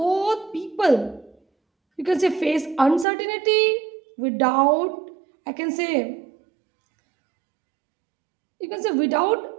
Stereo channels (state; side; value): drops out; left; at 3.1 s